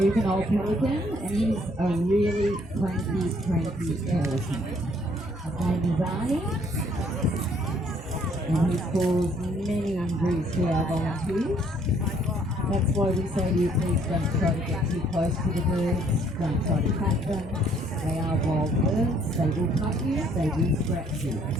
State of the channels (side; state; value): both; normal; correlation 0.64